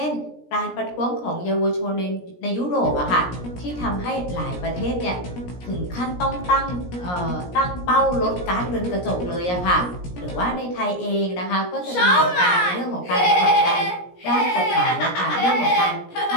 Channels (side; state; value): right; late; 17 ms